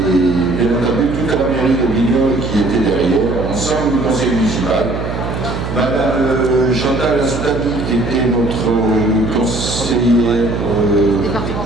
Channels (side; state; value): right; noise; hum, 5 dB below the sound